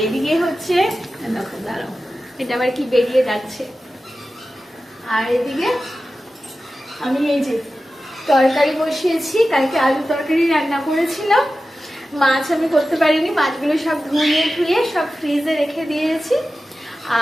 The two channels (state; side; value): normal; both; correlation 0.94